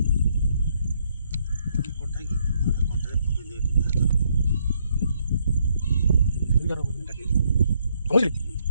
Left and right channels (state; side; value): inverted; both; correlation -0.72